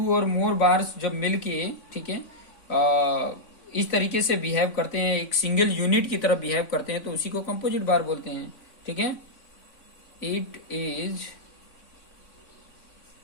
और मोर बार्स जब मिलके, ठीक है, इस तरीके से बिहेव करते हैं, एक सिंगल यूनिट की तरह बिहेव करते हैं, तो उसी को कंपोजिट बार बोलते हैं। ठीक है, it is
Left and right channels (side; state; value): right; late; 3.6 ms